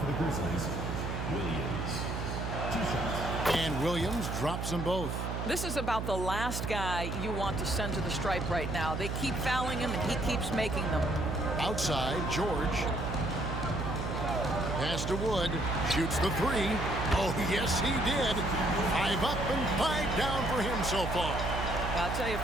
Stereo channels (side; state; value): right; noise; hum, 3 dB below the sound